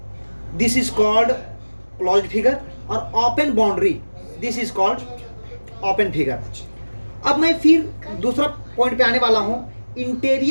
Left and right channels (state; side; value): inverted; both; correlation -1.00